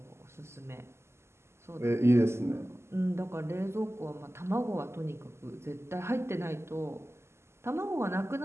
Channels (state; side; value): late; left; 0.13 ms